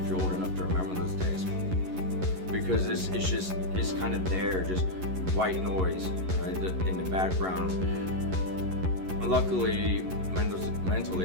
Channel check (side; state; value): left; late; 11 ms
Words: you're old enough to remember those days. Because it's kind of there, just white noise, right, in the background. Luckily,